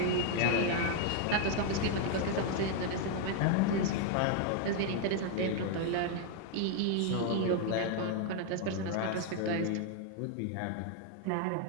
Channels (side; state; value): both; different; correlation 0.00